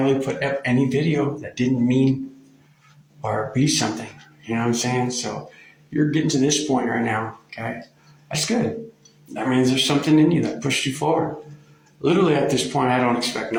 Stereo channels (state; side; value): identical; both; correlation 1.00